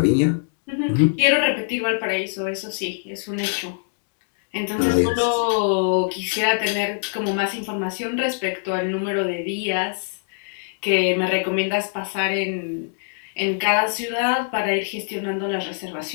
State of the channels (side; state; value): right; silent; digital silence